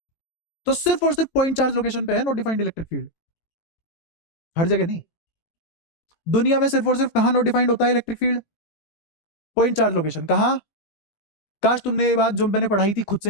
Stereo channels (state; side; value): late; right; 18 ms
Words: तो सिर्फ और सिर्फ पॉइंट चार्ज लोकेशन पे है नॉट डिफाइंड इलेक्ट्रिक फील्ड, हर जगह नहीं। दुनिया में सिर्फ और सिर्फ कहां नॉट डिफाइंड होता है electric field? Point charge location. कहां? काश तुमने ये बात जो मैंने पढ़ाई थी खुद